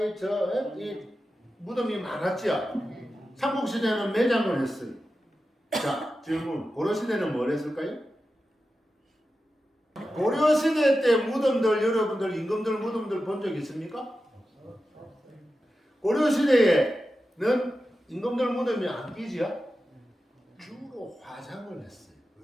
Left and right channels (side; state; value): both; normal; correlation 0.92